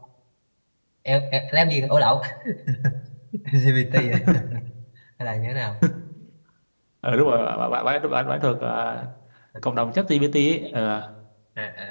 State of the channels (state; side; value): inverted; both; correlation -1.00